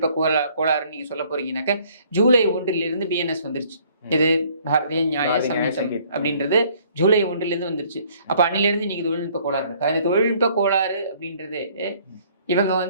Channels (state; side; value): inverted; both; correlation -0.60